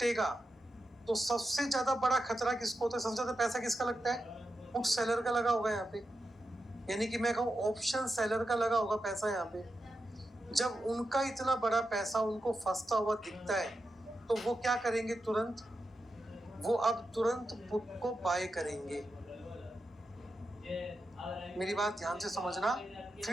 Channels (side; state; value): both; normal; correlation 0.89